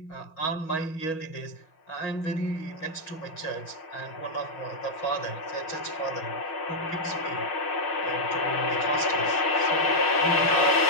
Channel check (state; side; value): late; right; 6.2 ms